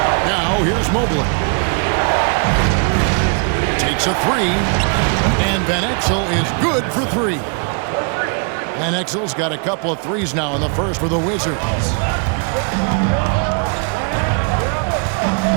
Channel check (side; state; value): left; quieter; 39.1 dB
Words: Now here's Mobley. Takes a 3. And Van Exel is good for 3. Van Exel's got a couple of threes now in the first for the Wizards.